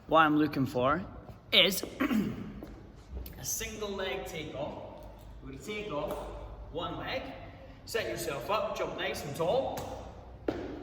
what I'm looking for is a single leg takeoff. We're going to take off one leg, set yourself up, jump nice and tall,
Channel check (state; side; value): identical; both; correlation 1.00